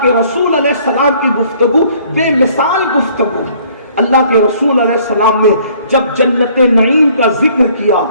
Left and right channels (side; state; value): both; inverted; correlation -0.59